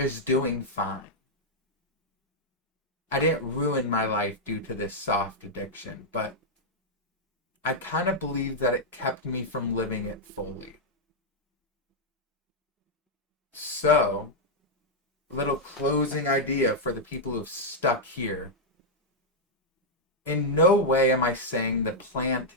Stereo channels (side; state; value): both; normal; correlation -0.04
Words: doing fine. I didn't ruin my life due to this soft addiction, but I kind of believe that it kept me from living it fully. So, little closing idea for the people who've stuck here. In no way am I saying the plant